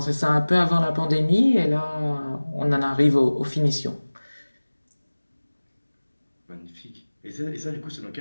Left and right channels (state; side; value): inverted; both; correlation -1.00